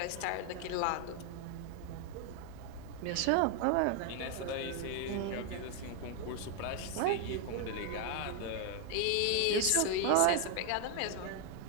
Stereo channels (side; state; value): both; different; correlation 0.00